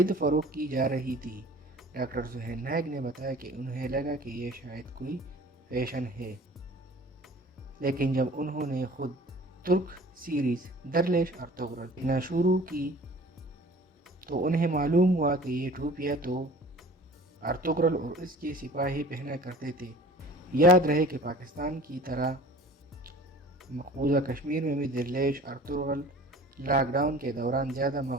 فروخت کی جا رہی تھی۔ ڈاکٹر سہیل نائک نے بتایا کہ انہیں لگا کہ یہ شاید کوئی فیشن ہے، لیکن جب انہوں نے خود ترک سیریز درلیش ارطغرل دیکھنا شروع کی تو انہیں معلوم ہوا کہ یہ ٹوپیاں تو ارطغرل اور اس کے سپاہی پہنا کرتے تھے۔ یاد رہے کہ پاکستان کی طرح مقبوضہ کشمیر میں بھی درلیش ارطغرل لاک ڈاؤن کے دوران زیادہ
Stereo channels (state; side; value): normal; both; correlation 0.45